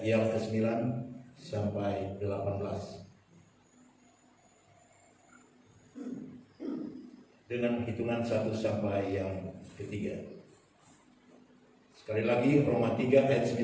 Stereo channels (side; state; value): both; identical; correlation 1.00